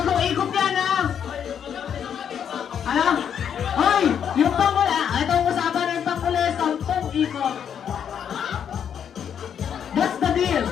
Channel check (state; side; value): quieter; right; 8.3 dB